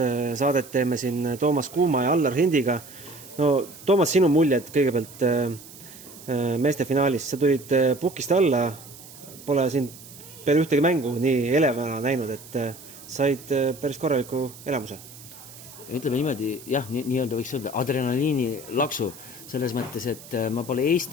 saadet, teeme siin Toomas Kuuma ja Allar Hindiga. Toomas, sinu muljed kõigepealt meeste finaalis, sa tulid pukist alla, pole siin peale ühtegi mängu nii elevana näinud, et said päris korraliku elamuse. Ütleme niimoodi, jah, nii-öelda võiks öelda adrenaliini laksu, selles mõttes, et ma pole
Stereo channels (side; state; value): right; noise; hiss, 18 dB below the sound